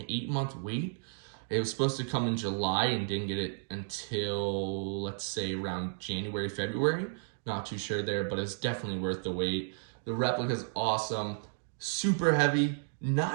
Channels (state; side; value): silent; left; digital silence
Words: wait. It was supposed to come in July and didn't get it until, let's say, around January, February. Not too sure there, but it's definitely worth the wait. The replica's awesome, super heavy,